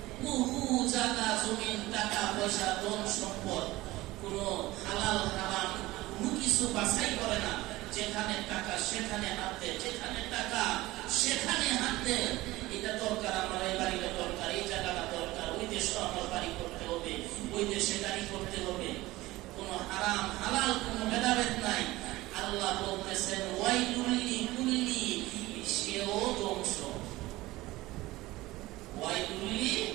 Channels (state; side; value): quieter; left; 18.6 dB